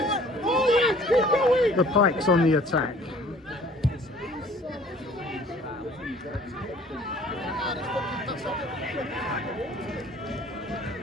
The Pikes on the attack.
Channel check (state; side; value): normal; both; correlation 0.53